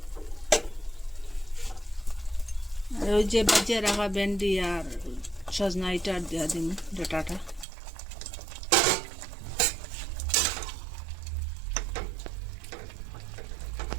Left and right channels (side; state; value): left; drops out; at 7.7 s